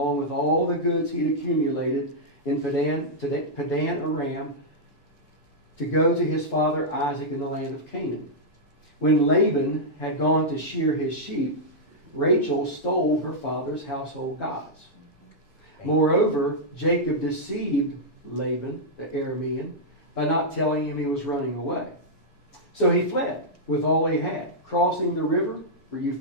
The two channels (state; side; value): late; right; 7.0 ms